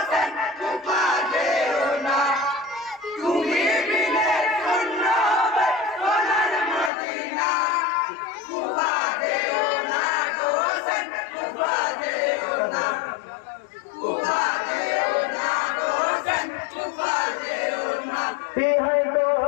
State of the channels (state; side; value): drops out; right; at 6.9 s